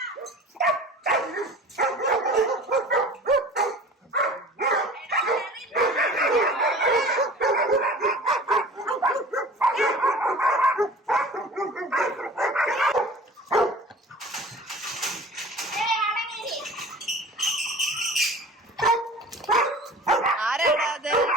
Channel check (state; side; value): normal; both; correlation 0.42